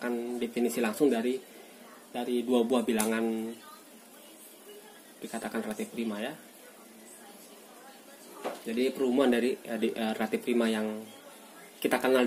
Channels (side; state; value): both; identical; correlation 1.00